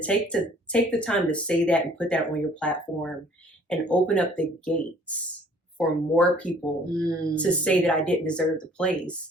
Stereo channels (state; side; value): normal; both; correlation 0.56